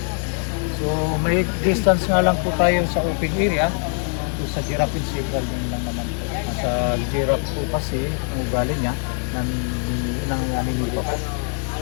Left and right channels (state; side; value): silent; right; 64 dB below the other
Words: So may distance nga lang po tayo sa open area. So, sa giraffe and zebra din lang naman po. Sa giraffe po kasi ang ugali niya ng aninipa po.